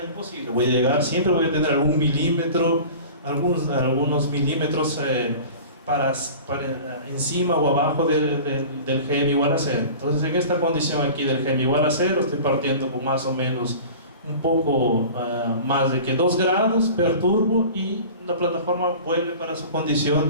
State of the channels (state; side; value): inverted; both; correlation -0.39